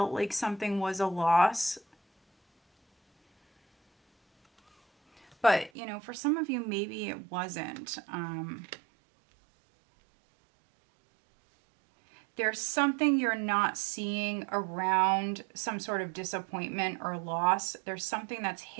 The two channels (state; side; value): drops out; left; at 5.7 s